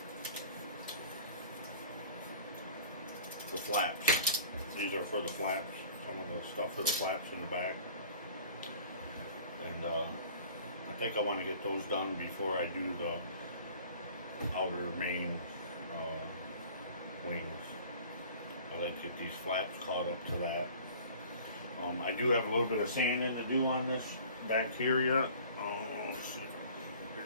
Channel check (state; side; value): inverted; both; correlation -0.46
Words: flaps. These are for the flaps, some of the stuff for the flaps in the back, and I think I want to get those done before I do the outer main wings. I like to get these flaps caught up to that. I do have a little bit of sanding to do on this back here yet. Let's see if I can get